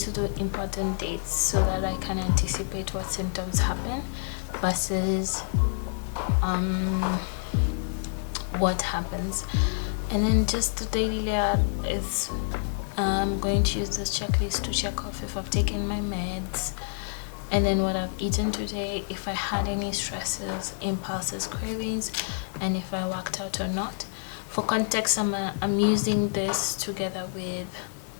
do important dates so that I can anticipate what symptoms happen versus what happens. And then just the daily layout is I'm going to use this checklist to check off if I've taken my meds, and then what I've eaten today, if I had any stresses, impulses, cravings, and if I worked out or not. For context, I'm using this together with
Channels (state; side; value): silent; right; digital silence